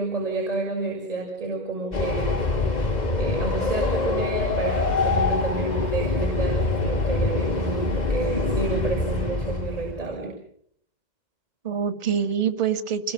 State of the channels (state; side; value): late; right; 2.0 ms